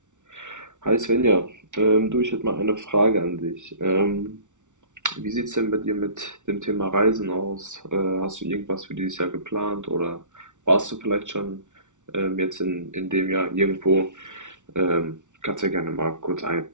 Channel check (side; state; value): left; late; 0.86 ms